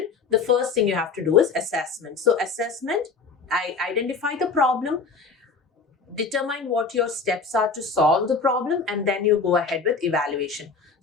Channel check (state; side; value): quieter; right; 4.7 dB